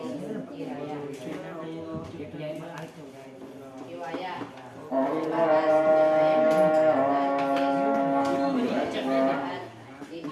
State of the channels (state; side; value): identical; both; correlation 1.00